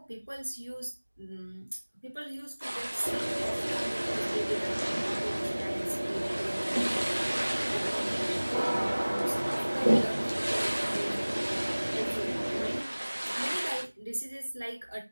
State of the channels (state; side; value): inverted; both; correlation -1.00